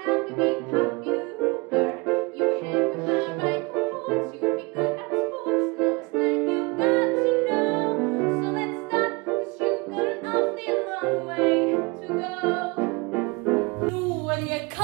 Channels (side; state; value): left; quieter; 27.7 dB